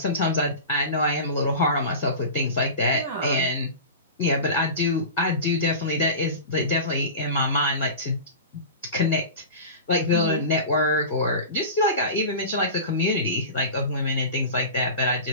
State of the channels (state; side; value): inverted; both; correlation -0.31